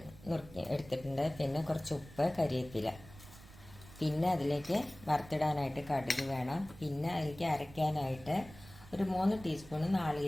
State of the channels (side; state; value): right; noise; rumble, 19 dB below the sound